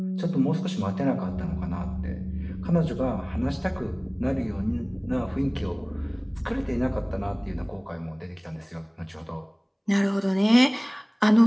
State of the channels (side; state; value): both; identical; correlation 1.00